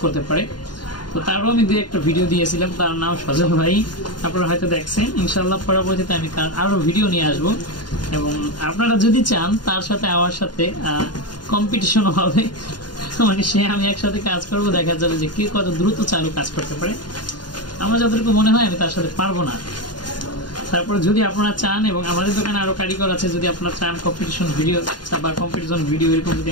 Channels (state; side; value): late; right; 0.70 ms